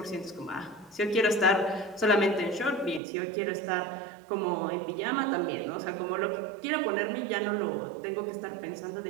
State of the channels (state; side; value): drops out; left; at 3.0 s